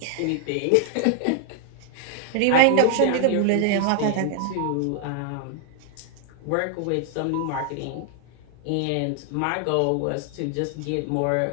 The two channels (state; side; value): different; both; correlation 0.00